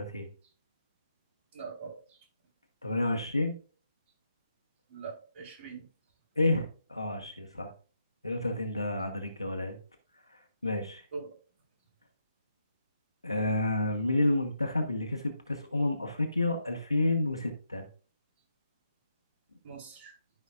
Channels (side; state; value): both; inverted; correlation -0.81